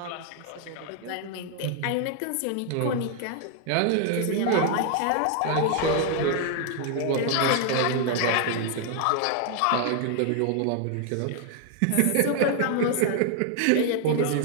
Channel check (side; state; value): both; different; correlation 0.00